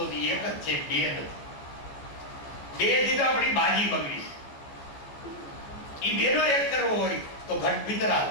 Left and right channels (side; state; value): right; late; 14 ms